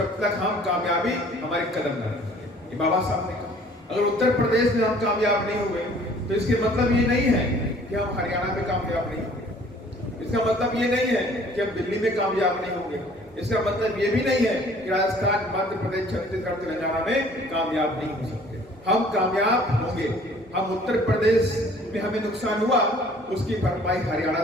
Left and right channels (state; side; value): normal; both; correlation 0.54